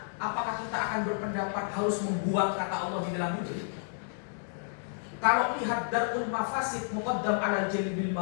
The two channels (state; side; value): silent; right; digital silence